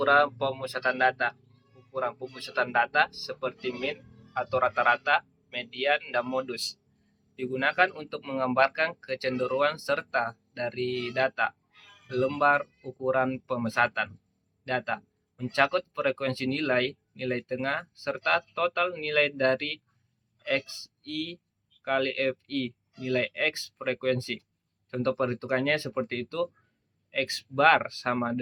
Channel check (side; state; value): both; identical; correlation 1.00